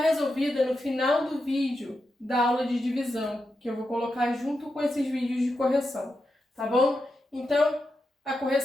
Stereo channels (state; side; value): normal; both; correlation 0.87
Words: no final do vídeo da aula de divisão, que eu vou colocar junto com esses vídeos de correção, tá bom? Então, a